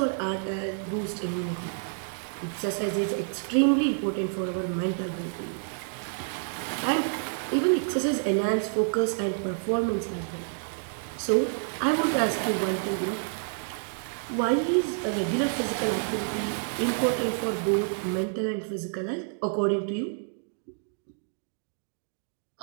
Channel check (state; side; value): silent; left; digital silence